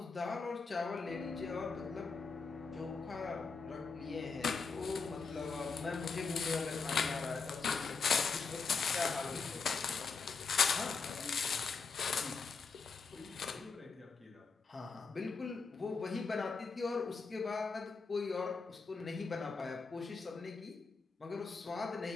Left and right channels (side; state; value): right; quieter; 4.8 dB